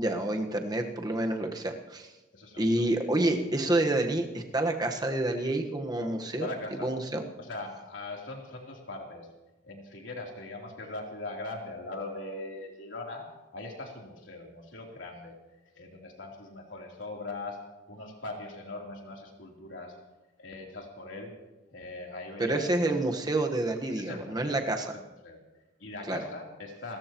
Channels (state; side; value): normal; both; correlation 0.61